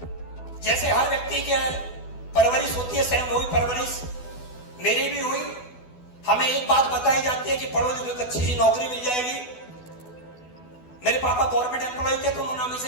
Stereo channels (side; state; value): right; late; 12 ms